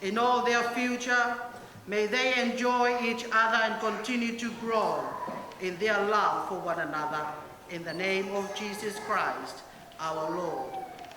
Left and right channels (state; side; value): identical; both; correlation 1.00